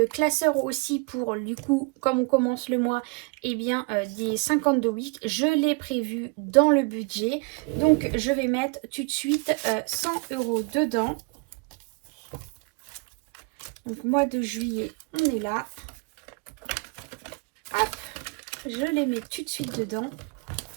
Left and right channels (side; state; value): left; quieter; 30.0 dB